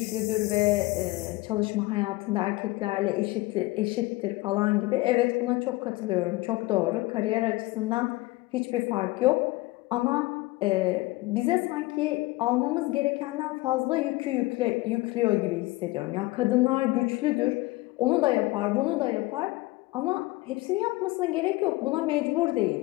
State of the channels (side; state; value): right; quieter; 20.7 dB